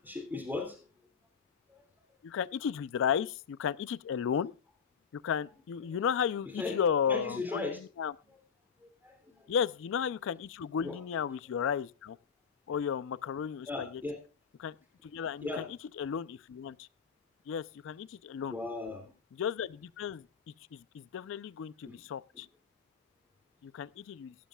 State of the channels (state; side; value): quieter; right; 6.8 dB